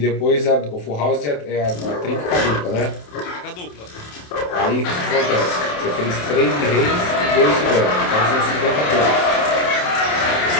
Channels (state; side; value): late; right; 28 ms